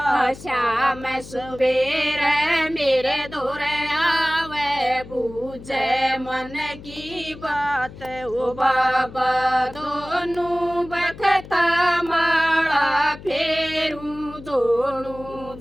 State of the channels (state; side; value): noise; left; hum, 16 dB below the sound